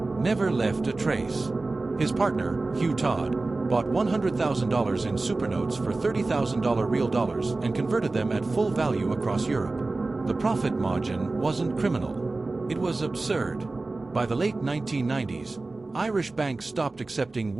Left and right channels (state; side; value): quieter; left; 3.3 dB